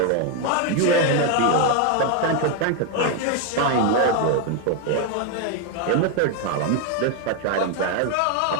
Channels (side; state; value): both; different; correlation 0.01